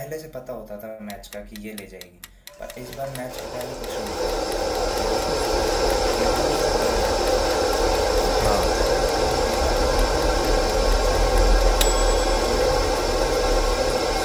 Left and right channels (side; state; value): both; identical; correlation 1.00